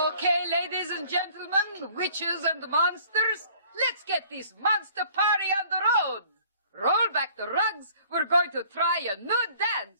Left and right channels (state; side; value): inverted; both; correlation -0.55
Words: ladies and gentlemen, witches and monsters, let's get this monster party on the road. Roll back the rugs. We're going to try a new